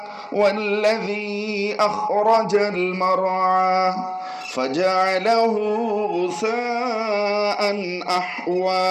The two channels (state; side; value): identical; both; correlation 1.00